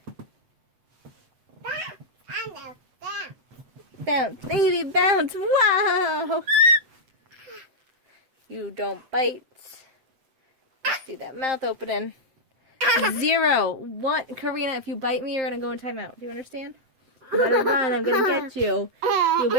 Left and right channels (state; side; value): late; left; 7.6 ms